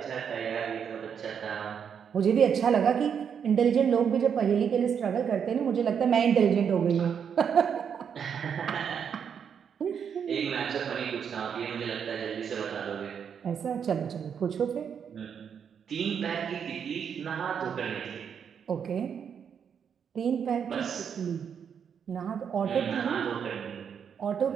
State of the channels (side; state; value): left; quieter; 7.5 dB